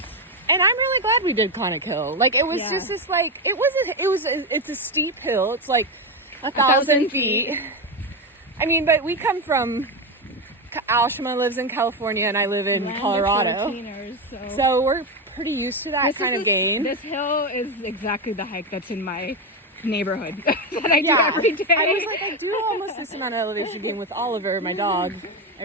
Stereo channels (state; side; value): normal; both; correlation 0.12